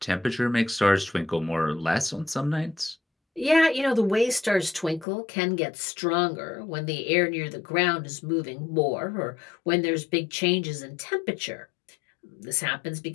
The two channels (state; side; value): drops out; right; at 5.1 s